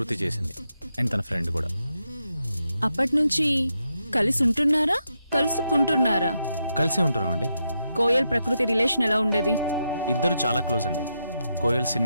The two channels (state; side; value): inverted; both; correlation -0.84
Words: చేసింది, అండ్ తన ఫ్రెండ్ కూడా. అప్పటి నుంచి కలిసి ఉంటున్నారా, కలుసుకుంటున్నారా? కలిసే ఉంటున్నాం అండి. కోయల్ ప్రకృతి రిలేషన్ ఎలా ఉండేది? ఇద్దరు చాలా క్లోజ్ అండి. కోయల్